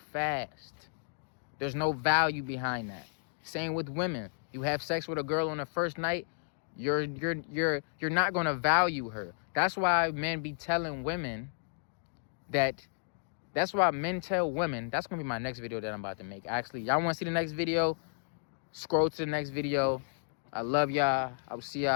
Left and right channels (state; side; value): silent; right; digital silence